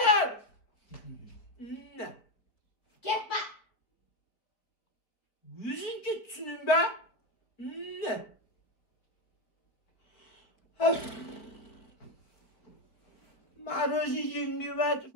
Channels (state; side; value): late; right; 4.5 ms